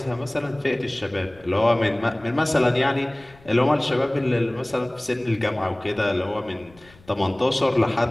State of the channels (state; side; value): noise; left; rumble, 26 dB below the sound